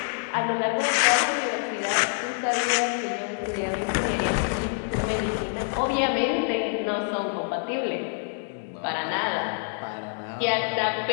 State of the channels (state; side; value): silent; right; 61 dB below the other